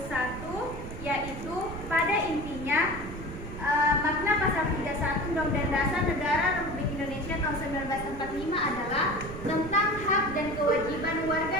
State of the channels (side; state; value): right; noise; rumble, 10 dB below the sound